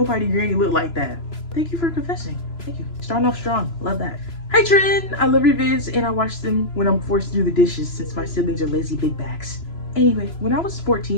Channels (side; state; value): right; late; 3.0 ms